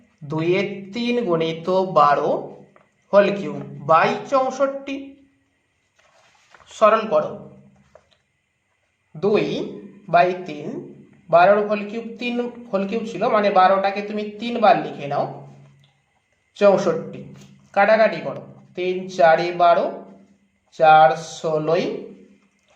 2/3 গুণিত 12 হোল কিউব বাই 64। সরল করো। 2/3, 12 হোল কিউব 3 হোল কিউব ছিল, মানে 12টাকে তুমি 3 বার লিখে নাও। 64 কাটাকাটি করো। 3 × 4 = 12, 4 × 16,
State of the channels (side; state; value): both; identical; correlation 1.00